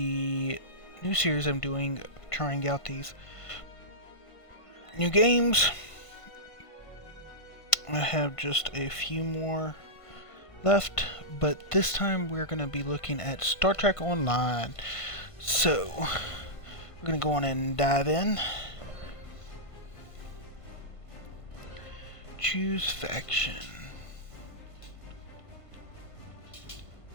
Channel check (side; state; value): right; late; 1.5 ms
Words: new series I'm doing, trying out these new games. I have just a few more left, but this time we're going to be looking at Star Trek Online. So, we're going to go on and dive in. Choose faction.